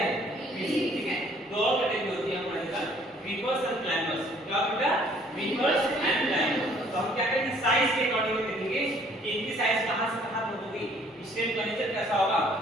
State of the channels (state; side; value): normal; both; correlation 0.59